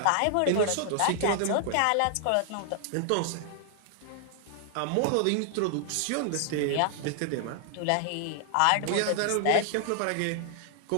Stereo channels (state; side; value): different; both; correlation 0.00